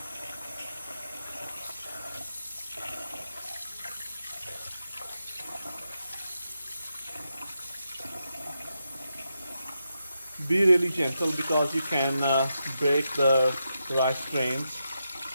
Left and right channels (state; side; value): inverted; both; correlation -0.85